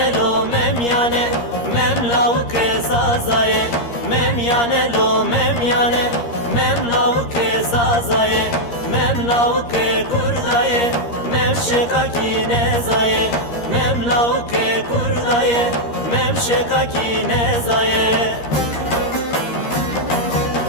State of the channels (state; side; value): late; right; 13 ms